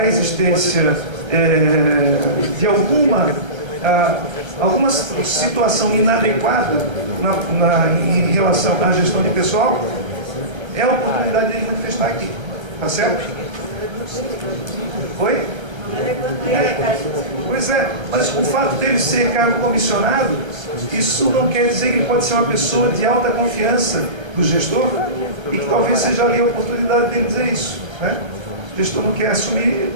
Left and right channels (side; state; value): left; late; 1.3 ms